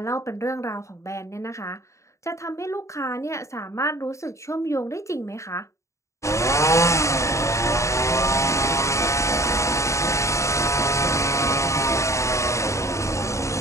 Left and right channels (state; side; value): late; right; 0.14 ms